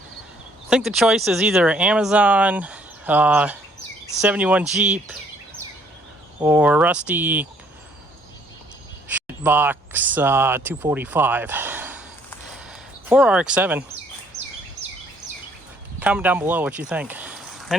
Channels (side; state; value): both; normal; correlation 0.64